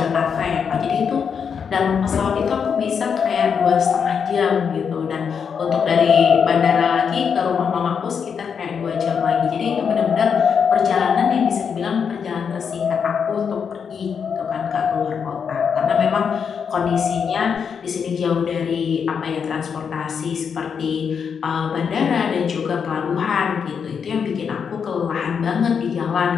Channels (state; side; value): quieter; right; 6.7 dB